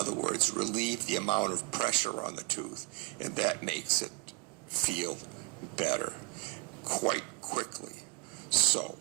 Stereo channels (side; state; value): left; quieter; 26.0 dB